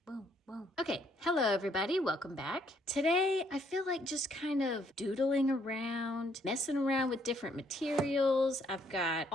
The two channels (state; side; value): normal; both; correlation 0.68